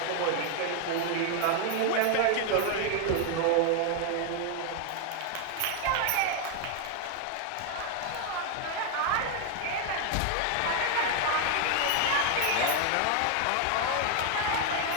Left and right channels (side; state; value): both; different; correlation 0.00